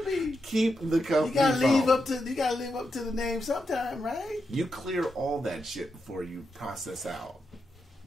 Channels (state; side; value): normal; both; correlation 0.85